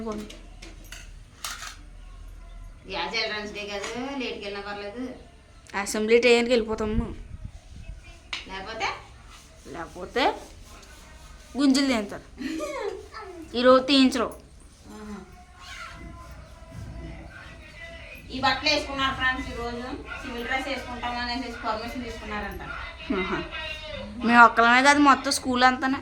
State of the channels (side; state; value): both; identical; correlation 1.00